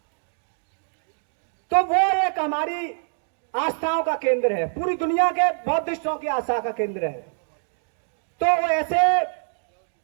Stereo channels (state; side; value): silent; left; digital silence